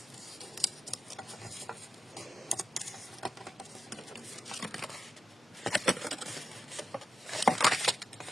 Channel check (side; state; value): both; normal; correlation 0.90